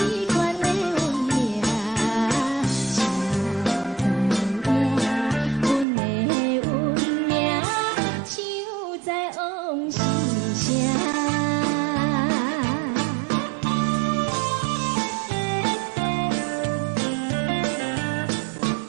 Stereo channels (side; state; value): left; drops out; at 5.9 s